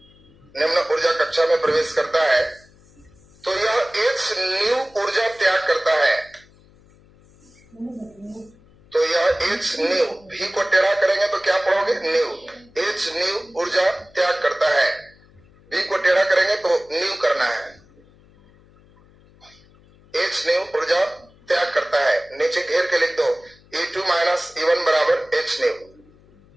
निम्न ऊर्जा कक्षा में प्रवेश करता है तो यह एच न्यू ऊर्जा त्याग करता है। तो यह एच न्यू, भी को टेढ़ा करेंगे तो क्या पढ़ोगे, न्यू, एच न्यू ऊर्जा त्याग करता है। भी को टेढ़ा करेंगे तो न्यू करना है, एच न्यू ऊर्जा त्याग करता है। नीचे घेर के लिख दो, E2 माइनस E1 बराबर H new,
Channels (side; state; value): left; noise; hum, 28 dB below the sound